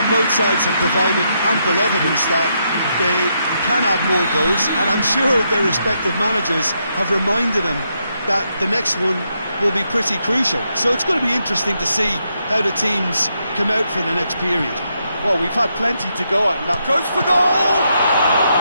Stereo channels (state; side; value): inverted; both; correlation -0.80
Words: both sides have provided ample evidence that they can add more goals, and I'm sure their respective managers have reminded them that the next one will be pretty crucial. So it's going to be interesting to see how the teams come out for the next period. Well, we've had plenty to go at, and that Goes for goal!